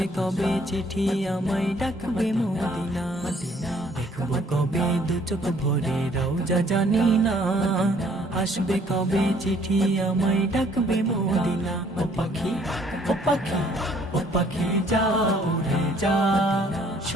কবে চিঠি আমায় ডাকবে মদিনা। দেখবো কবে দু চোখ ভরে রওজা জানি না, আসবে কবে চিঠি আমায় ডাকবে মদিনা। ও পাখি, ও পাখি, ও পাখি যা উড়ে যা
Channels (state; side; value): normal; both; correlation 0.61